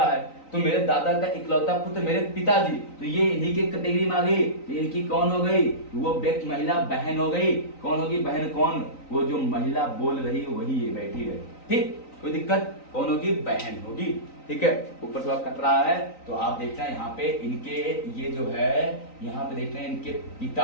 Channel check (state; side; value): late; right; 3.9 ms